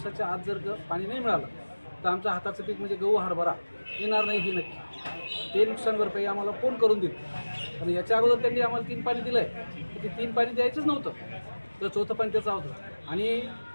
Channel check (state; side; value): inverted; both; correlation -1.00